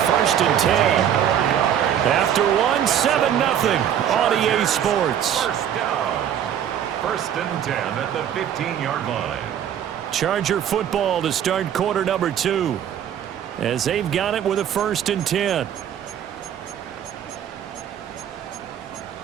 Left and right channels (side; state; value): left; quieter; 9.7 dB